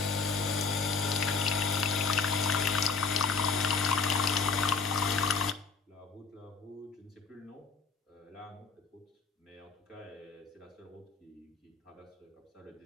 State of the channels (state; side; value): quieter; right; 4.9 dB